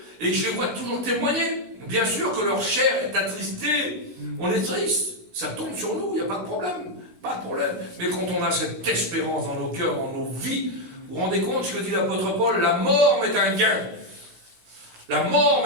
et que je les vois toujours témoigner. Bien sûr que leur chair est attristée. On est triste. Ça tombe sur nous, il n'y a pas de problème. Pas de problème. Mais quand on a cette espérance dans nos cœurs, dans nos vies, vous vous rendez compte ce que dit l'apôtre Paul? La mort m'est un gain. La mort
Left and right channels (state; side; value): late; left; 16 ms